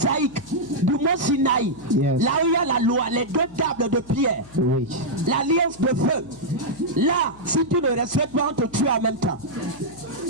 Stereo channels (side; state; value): left; noise; hum, 23 dB below the sound